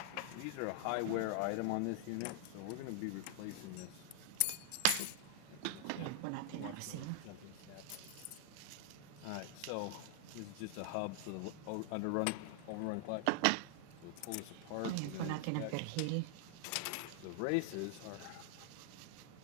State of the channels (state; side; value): different; both; correlation 0.00